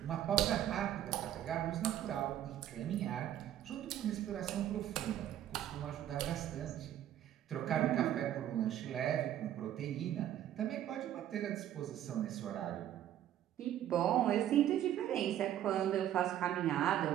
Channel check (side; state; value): left; quieter; 11.5 dB